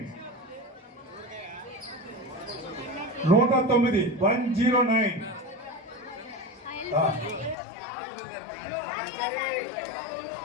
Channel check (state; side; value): drops out; right; at 7.6 s